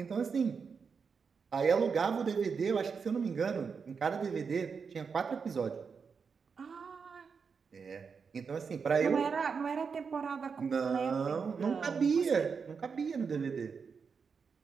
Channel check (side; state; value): left; quieter; 5.7 dB